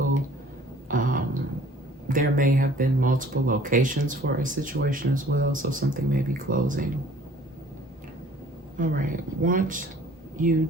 There may have been multiple locations for a situation as well, so something may be closing. All right, want you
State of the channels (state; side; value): normal; both; correlation 0.53